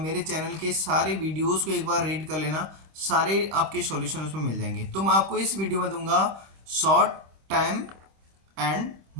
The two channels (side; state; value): left; late; 26 ms